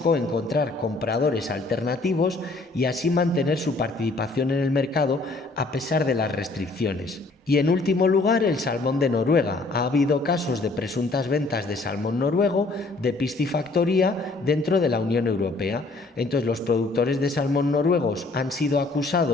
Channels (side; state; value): right; quieter; 3.3 dB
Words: encontrar compradores alternativos y así mantener su participación en el mercado a pesar de las restricciones. Y en último lugar, el salmón de Noruega. Ha habido casos de presuntas ventas de salmón noruego de piscifactoría dentro de la Unión Europea. Entonces, los productores de salmón noruegos han sido